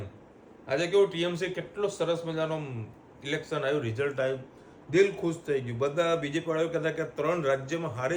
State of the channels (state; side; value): identical; both; correlation 1.00